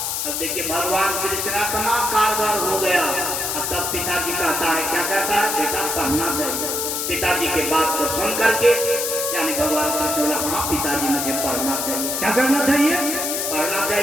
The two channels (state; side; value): noise; left; hiss, 1 dB below the sound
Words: अब देखिए भगवान कृष्ण इतना कारगर हो गया। अब तब पिताजी कहता है, क्या कहता है? बेटा पढ़ना चाहिए। पिताजी के बात को सुन करके यानी भगवान कृष्ण बोला हाँ पिताजी मुझे पढ़ना चाहिए। क्या करना चाहिए? पढ़ना